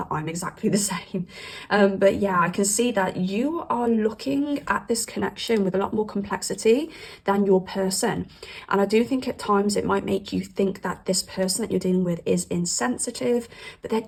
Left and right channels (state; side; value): identical; both; correlation 1.00